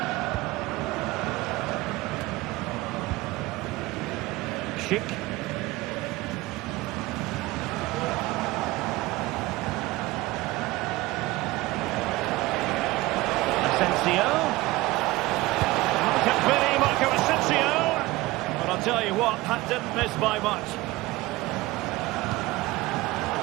Schick. Asensio. Marco Asensio. But I'll tell you what, that didn't miss by much.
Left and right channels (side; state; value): left; quieter; 19.6 dB